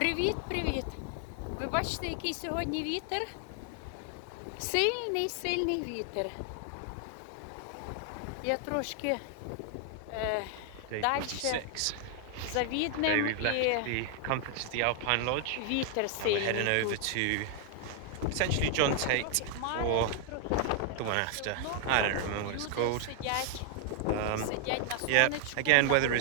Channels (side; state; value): both; different; correlation 0.00